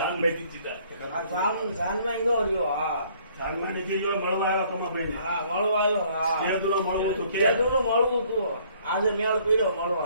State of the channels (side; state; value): both; inverted; correlation -0.60